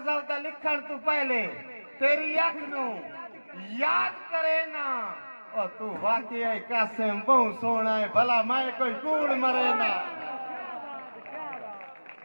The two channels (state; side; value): inverted; both; correlation -1.00